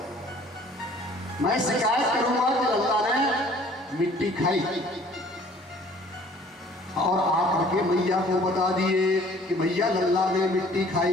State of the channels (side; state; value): both; normal; correlation 0.54